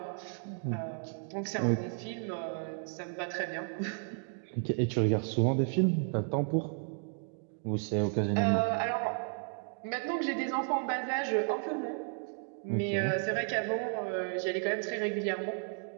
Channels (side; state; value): left; silent; 56 dB below the other